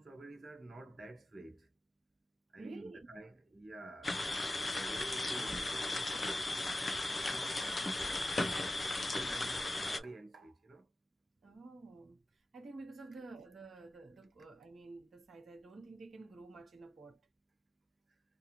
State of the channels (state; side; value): normal; both; correlation 0.94